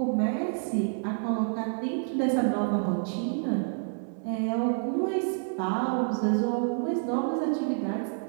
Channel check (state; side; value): silent; left; digital silence